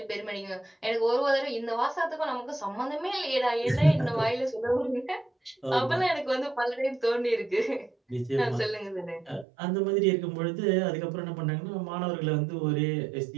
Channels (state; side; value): drops out; left; at 9.5 s